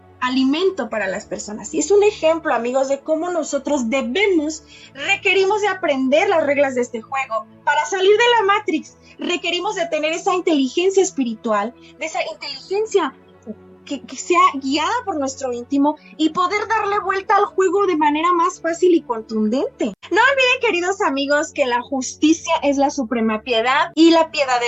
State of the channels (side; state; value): both; identical; correlation 1.00